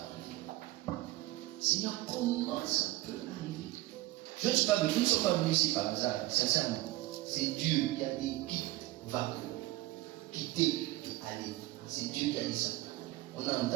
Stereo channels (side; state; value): left; quieter; 18.1 dB